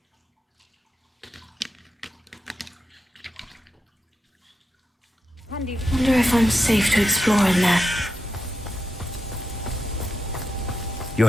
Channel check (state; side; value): normal; both; correlation 0.86